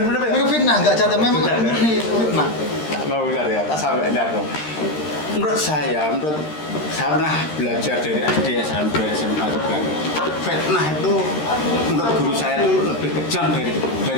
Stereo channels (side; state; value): right; late; 13 ms